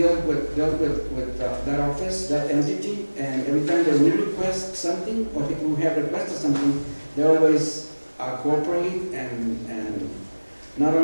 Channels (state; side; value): inverted; both; correlation -1.00